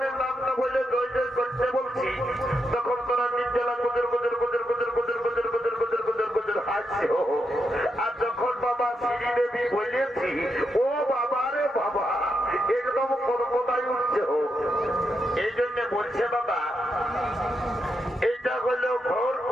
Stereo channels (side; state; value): both; normal; correlation 0.84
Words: নাম না বলে জয় জয় করতে বলছি, তখন তোরা নির্জলা গুজর গুজর গুজর গুজর গুজর গুজর গুজর গুজর গুজর গুজর হাসছে। আর যখন বাবা শ্রী দেবী বলেছি, ও বাবা রে বাবা, একদম কোথায় উঠছে। এই জন্য বলছে বাবা, এইটা হলো ঘোর